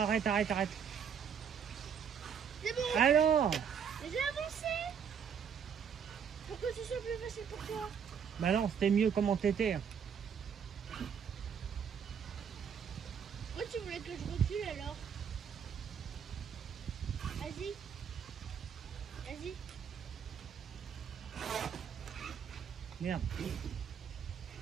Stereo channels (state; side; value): quieter; left; 7.4 dB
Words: arrête. C'est bon. Alors, Mais j'ai avancé. Pour que ce soit plus facile pour toi. bah non, c'était mieux comment t'étais. Pourquoi tu voulais que je recule alors? Vas-y. Vas-y. Merde.